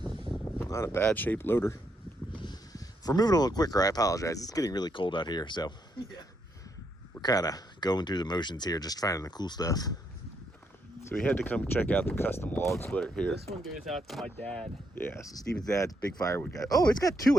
Not a bad shaped loader. If we're moving a little quicker, I apologize. It's getting really cold out here, so Yeah. we're kind of going through the motions here, just finding the cool stuff. So we had to come check out the custom log splitter here. This one goes out to my dad. Yeah, so Steven's dad's big firewood guy. Oh, it's got 2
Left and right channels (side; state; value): both; normal; correlation 0.77